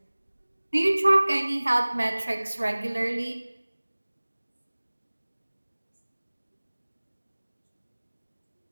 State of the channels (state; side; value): inverted; both; correlation -1.00